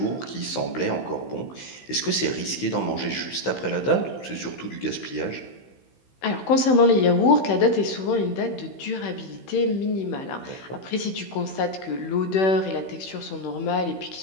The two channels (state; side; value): late; right; 16 ms